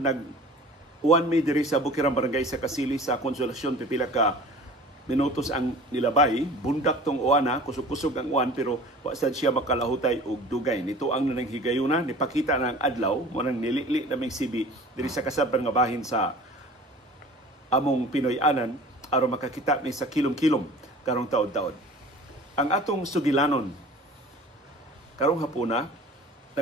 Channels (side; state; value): both; normal; correlation 0.43